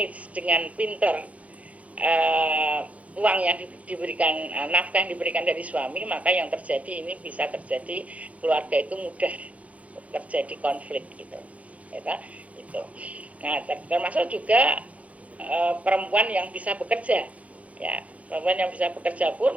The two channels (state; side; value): late; left; 0.067 ms